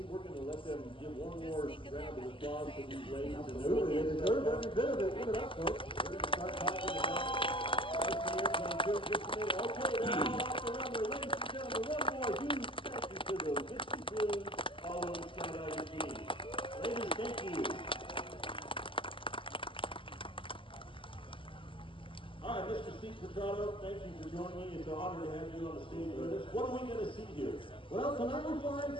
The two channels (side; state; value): right; late; 0.25 ms